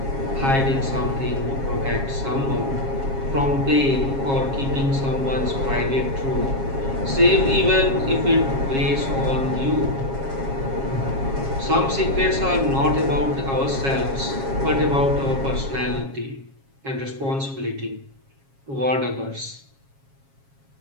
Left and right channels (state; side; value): late; left; 7.4 ms